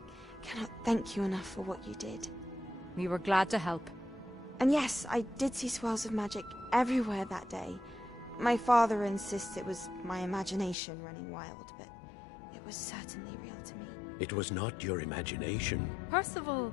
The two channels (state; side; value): drops out; right; at 10.8 s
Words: cannot thank you enough for what you did. We were glad to help. And yes, I did see swirls of magic everywhere that day. My father insists it was my imagination running wild, but it was certainly real to me. It was not your imagination. Percival,